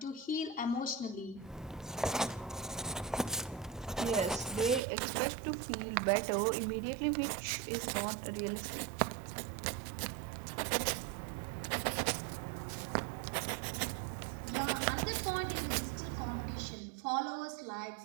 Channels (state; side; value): drops out; left; at 4.8 s